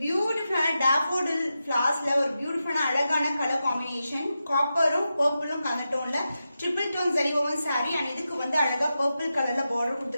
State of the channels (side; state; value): both; inverted; correlation -0.90